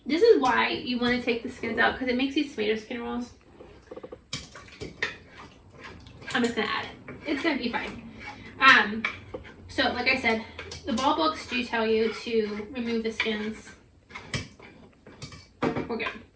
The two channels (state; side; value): identical; both; correlation 1.00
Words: This is why you want to take the skins out, because it makes these tomato skin rolls. I'm just gonna add it. It's gonna be fine. So like I said, the ball books do tell you to remove the skins. We're good.